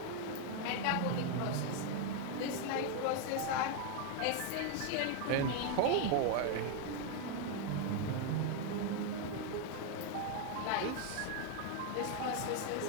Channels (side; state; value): both; different; correlation 0.01